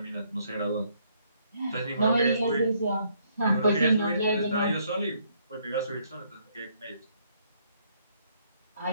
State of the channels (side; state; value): both; inverted; correlation -0.69